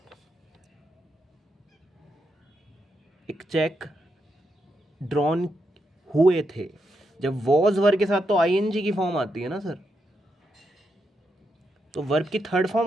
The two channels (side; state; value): both; normal; correlation 0.82